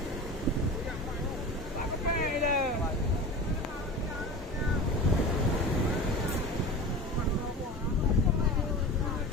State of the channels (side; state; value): both; normal; correlation 0.32